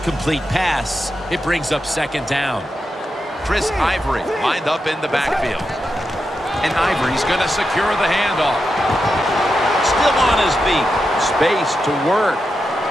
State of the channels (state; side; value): normal; both; correlation 0.87